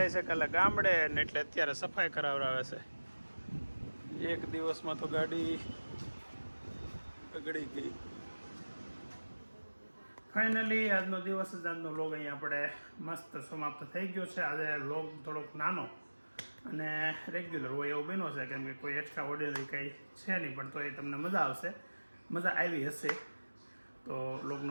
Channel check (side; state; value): both; inverted; correlation -1.00